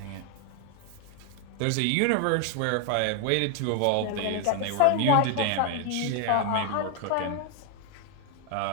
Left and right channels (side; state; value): both; different; correlation 0.00